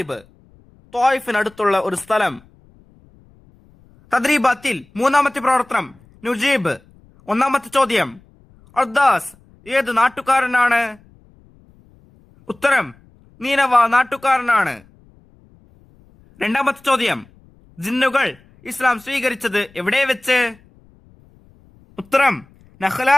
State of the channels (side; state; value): left; noise; rumble, 29 dB below the sound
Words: ത്വായിഫിനടുത്തുള്ള ഒരു സ്ഥലം. തദ്രീബാത്തിൽ മൂന്നാമത്തെ പ്രവർത്തനം നുജീബ്. ഒന്നാമത്തെ ചോദ്യം, അദ്ദാസ് ഏത് നാട്ടുകാരനാണ്? ഉത്തരം, നീനവ നാട്ടുകാരനാണ്. രണ്ടാമത്തെ ചോദ്യം, ജിന്നുകൾ ഇസ്ലാം സ്വീകരിച്ചത് എവിടെ വെച്ച്? ഉത്തരം, നഖ്ല